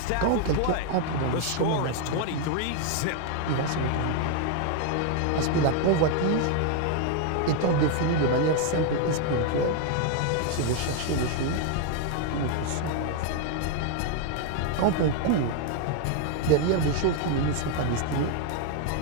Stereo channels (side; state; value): both; different; correlation 0.00